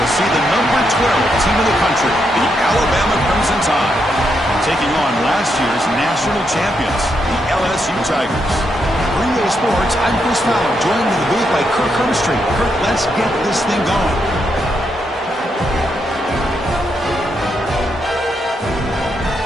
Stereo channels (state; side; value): normal; both; correlation 0.80